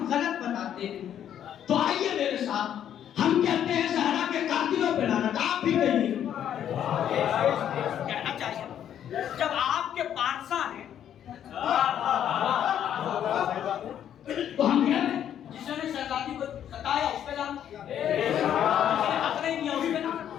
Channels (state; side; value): quieter; right; 10.0 dB